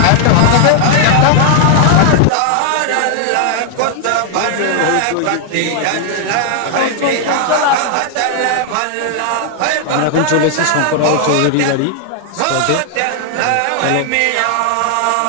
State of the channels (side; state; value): both; different; correlation 0.00